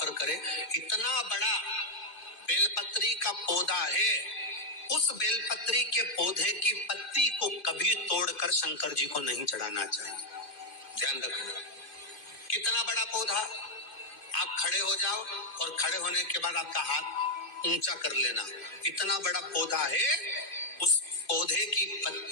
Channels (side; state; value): right; late; 2.1 ms